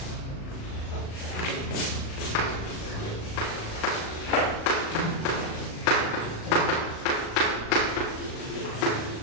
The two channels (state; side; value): late; right; 37 ms